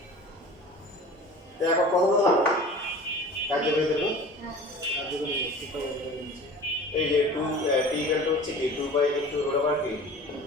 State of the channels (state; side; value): normal; both; correlation 0.41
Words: এখন প্রথমত কার্যকরী দেব এই যে 2 t ইকুয়াল টু হচ্ছে কি 2 বাই ইনটু রুট ওভার কি